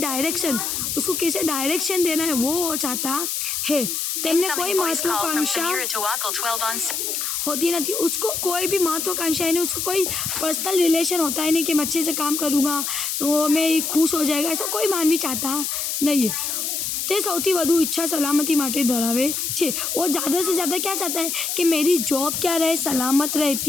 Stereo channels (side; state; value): left; noise; hiss, 2 dB below the sound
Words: उसको कैसे डायरेक्शन देना है वो चाहता है। तेमने कोई महत्वाकांक्षा होती नहीं, उसको कोई भी महत्वाकांक्षा है नहीं, उसको कोई पर्सनल रिलेशन होता है नहीं कि मैं अच्छे से काम करूँगा तो मैं खुश हो जाएगा, ऐसा कोई मानवी चाहता नहीं है। તે સૌથી વધુ ઈચ્છા સલામતી માટે ધરાવે છે। वो ज़्यादा से ज़्यादा क्या चाहता है कि मेरी जॉब क्या रहे, सलामत रहे,